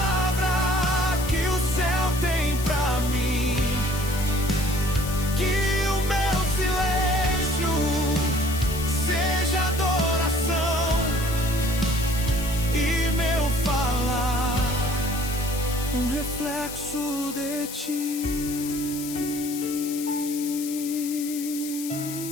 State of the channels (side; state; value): left; noise; hiss, 10 dB below the sound